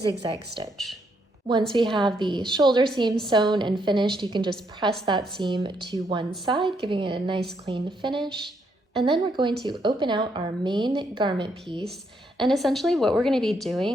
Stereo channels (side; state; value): both; normal; correlation 0.75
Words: stitch. Once we have the shoulder seam sewn and finished, you can just press that seam to one side, giving it a nice clean finish. And then we're going to open out our main garment piece. And essentially what we're going to be